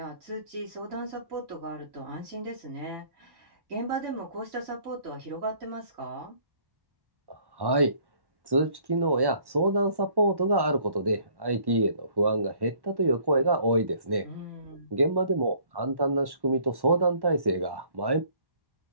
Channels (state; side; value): late; left; 1.1 ms